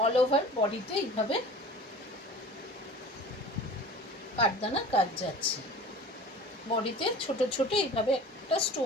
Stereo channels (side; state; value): both; normal; correlation 0.41